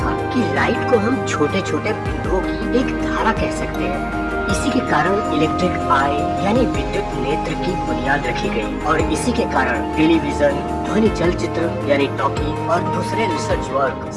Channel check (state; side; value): identical; both; correlation 1.00